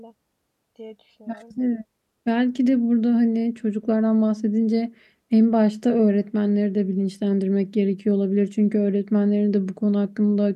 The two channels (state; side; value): identical; both; correlation 1.00